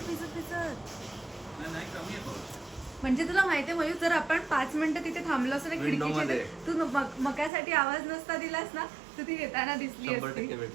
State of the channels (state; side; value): drops out; left; at 7.5 s